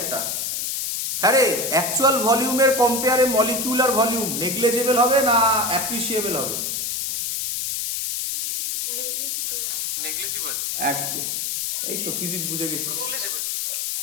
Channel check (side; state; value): left; noise; hiss, 2 dB below the sound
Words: একটা। হ্যাঁ রে, অ্যাকচুয়াল ভলিউমের কম্পেয়ারে মলিকিউলার ভলিউম নেগলিজেবল হবে না অ্যাপ্রিসিয়েবল হবে? নেগলিজিবল। একদম, এই তো ফিজিক্স বুঝে গেছিস। নেগলিজিবল।